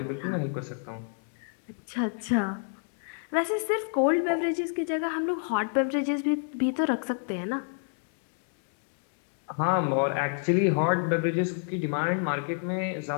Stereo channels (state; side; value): silent; right; 59 dB below the other